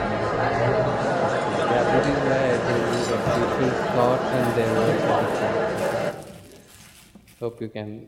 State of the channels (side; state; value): both; identical; correlation 1.00